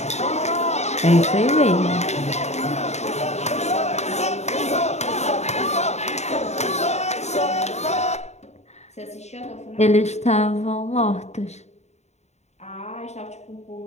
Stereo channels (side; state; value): right; late; 0.32 ms